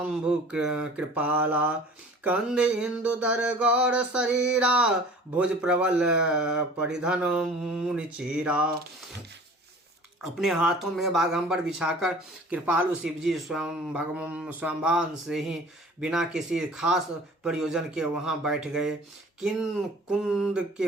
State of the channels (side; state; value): both; normal; correlation 0.45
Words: कृपाला कंद इंदु दर गौर शरीरा भुज प्रबल परिधन मुनि चीरा। अपने हाथों में बाघंबर बिछाकर कृपालु शिवजी स्वयंभान से ही बिना किसी खास प्रयोजन के वहां बैठ गए। कुंद के